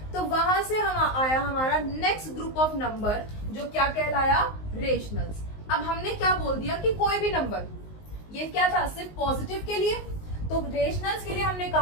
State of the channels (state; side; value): late; right; 19 ms